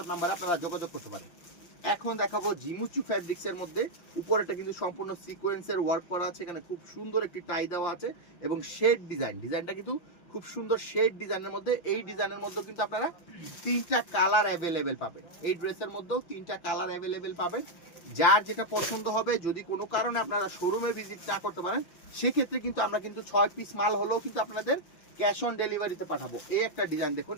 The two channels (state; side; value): late; right; 5.7 ms